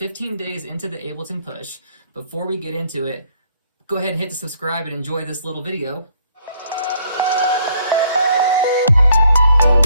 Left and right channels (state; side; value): inverted; both; correlation -0.66